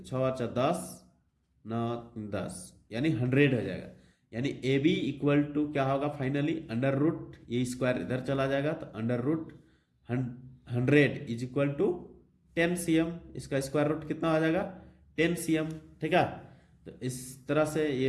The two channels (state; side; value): identical; both; correlation 1.00